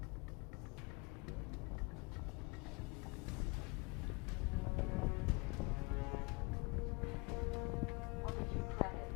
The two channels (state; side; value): quieter; right; 28.4 dB